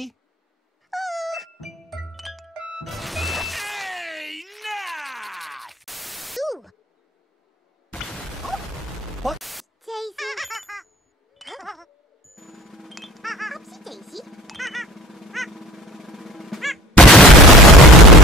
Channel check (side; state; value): both; normal; correlation 0.45